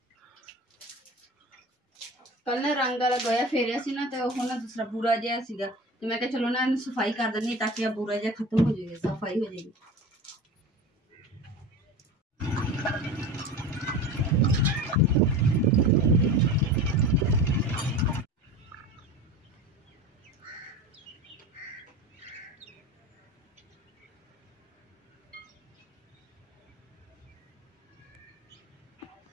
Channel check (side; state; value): both; normal; correlation 0.33